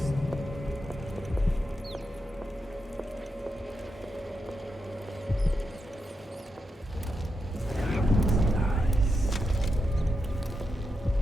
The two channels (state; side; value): normal; both; correlation 0.86